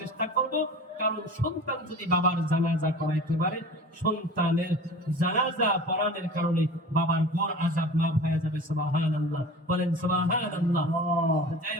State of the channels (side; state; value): both; normal; correlation 0.38